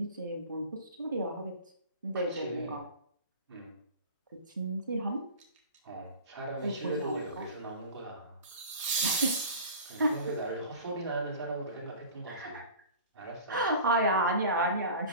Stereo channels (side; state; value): both; inverted; correlation -0.38